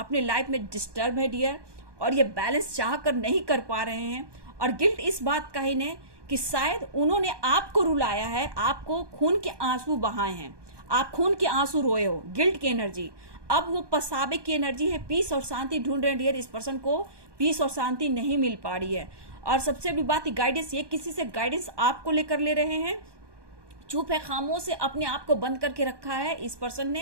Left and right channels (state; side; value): late; left; 1.2 ms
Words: लाइफ में डिस्टर्ब है डियर, और ये बैलेंस चाह कर नहीं कर पा रहे हैं। और गिल्ट इस बात का ही ने कि शायद उन्होंने आपको रुलाया है, आपको खून के आंसू बहाए हैं, आप खून के आंसू रोए हो, गिल्ट की एनर्जी। अब वो पछतावे की एनर्जी है, पीस और शांति ढूंढ रहे हैं डियर। इस पर्सन को पीस और शांति नहीं मिल पा रही है। और सबसे बड़ी बात, गाइडेंस, ये किसी से गाइडेंस आपको लेकर ले रहे हैं। चुप है, खामोश से अपने आप को बंद करके रखा है इस पर्सन